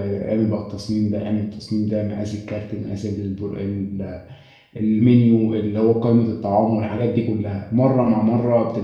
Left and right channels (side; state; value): both; identical; correlation 1.00